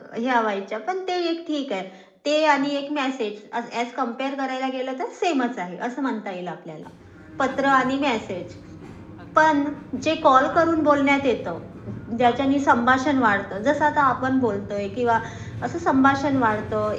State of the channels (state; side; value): identical; both; correlation 1.00